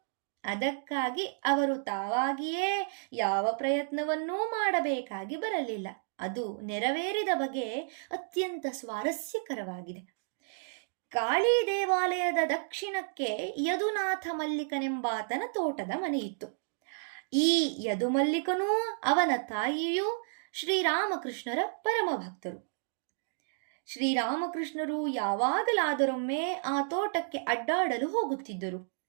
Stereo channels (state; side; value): silent; left; digital silence